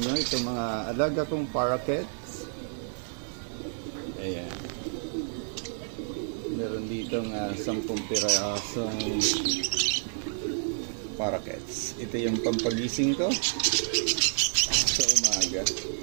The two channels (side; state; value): left; silent; digital silence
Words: itong mga alaga kong parakeets. Ayan. Meron ditong 10 pirasong parakeets. Ito yung pampagising ko sa umaga.